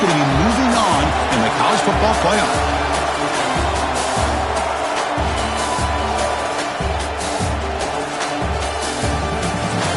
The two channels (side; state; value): both; identical; correlation 1.00